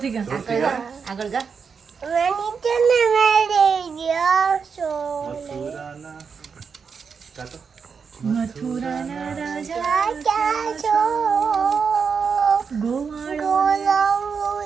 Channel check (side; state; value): left; quieter; 5.9 dB